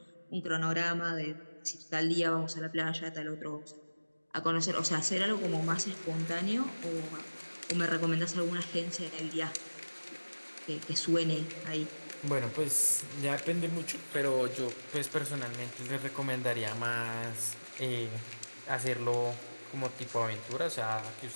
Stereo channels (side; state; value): both; inverted; correlation -1.00